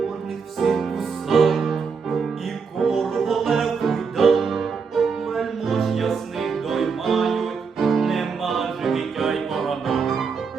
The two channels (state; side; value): quieter; left; 5.5 dB